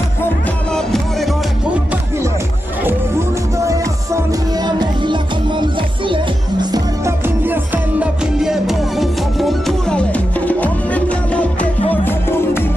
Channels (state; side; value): normal; both; correlation 0.90